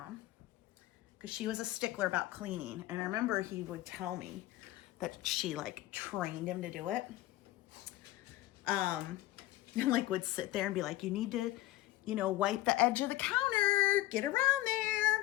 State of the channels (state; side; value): quieter; right; 16.3 dB